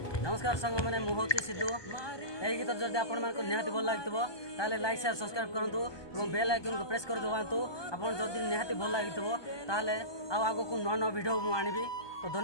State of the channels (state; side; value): late; right; 1.2 ms